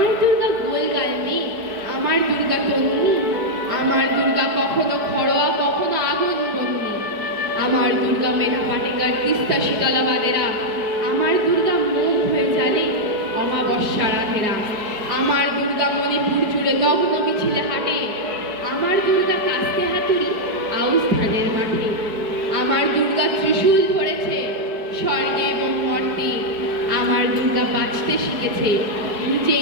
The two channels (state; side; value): late; left; 4.7 ms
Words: দুর্গা গোলগাল মেয়ে, আমার দুর্গা তন্নি। আমার দুর্গা কখনো খড়োয়া কখনো আগুন বন্যি। আমার দুর্গা মেধা পাটেকার তিস্তা শীতলাবাদেরা। আমার দুর্গা মুখ হয়ে জানে অমাবস্যা রাধেরা। আমার দুর্গা মণিপুর জুড়ে নগ্ন মিছিলে হাঁটে। আমার দুর্গা কাস্তে হাতুড়ি আউস ধানের মাঠে। আমার দুর্গা ত্রিশূল ধরেছে স্বর্গে এবং মর্তে। আমার দুর্গা বাঁচতে শিখেছে